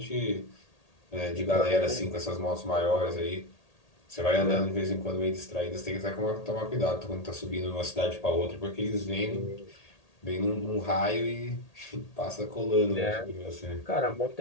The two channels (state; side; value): late; right; 1.8 ms